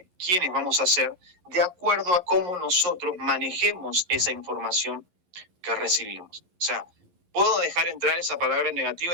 vamos a ser de acuerdo a cómo nosotros manejemos esa información que recibimos. O sea, puedo dejar entrar esa palabra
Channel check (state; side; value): late; left; 11 ms